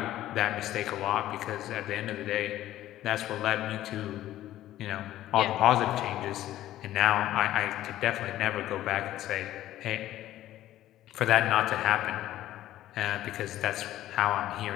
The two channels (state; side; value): quieter; right; 13.7 dB